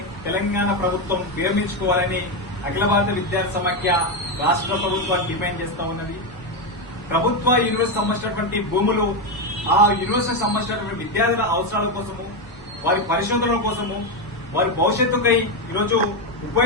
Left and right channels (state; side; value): normal; both; correlation 0.08